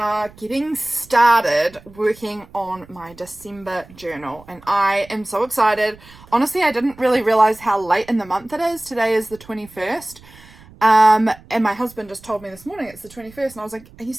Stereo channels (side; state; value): right; noise; rumble, 23 dB below the sound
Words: getting started working on my December journal and I am so excited. Honestly, I didn't really realize how late in the month it is. Today is the 21st and my husband just told me this morning it's the 21st and I was like, are you